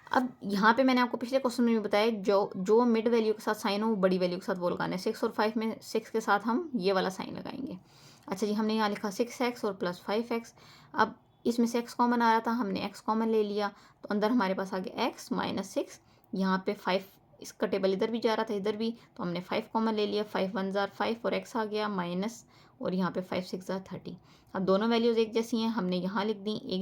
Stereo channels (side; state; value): both; identical; correlation 1.00